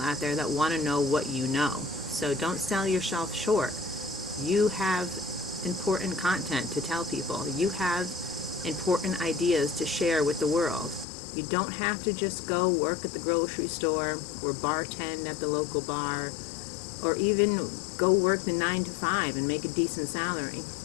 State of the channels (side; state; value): right; drops out; at 11.1 s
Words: there that want to know what you know. So don't sell yourself short. You have important content to tell people. You have important ideas to share with the world. You don't have to just go work at the grocery store or bartend at the local bar, or even go work the 9 to 5 and make a decent salary.